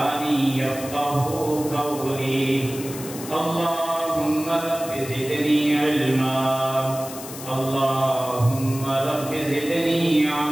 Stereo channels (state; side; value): noise; left; hiss, 12 dB below the sound